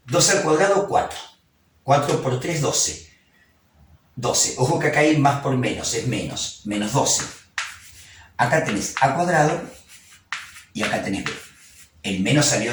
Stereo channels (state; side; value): identical; both; correlation 1.00